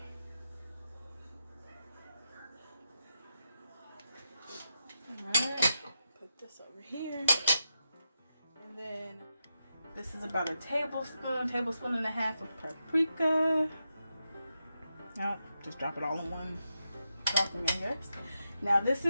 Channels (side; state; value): both; inverted; correlation -0.86